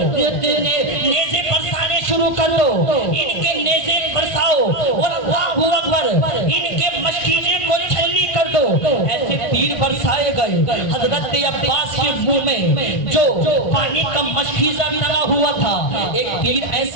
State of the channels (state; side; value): late; right; 1.5 ms